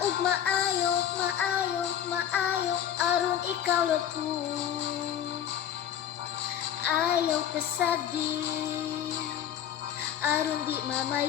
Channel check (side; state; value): right; quieter; 10.0 dB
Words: ug maayo, maayo, maayo, aron ikaw lapu ayaw kasagdi, aron di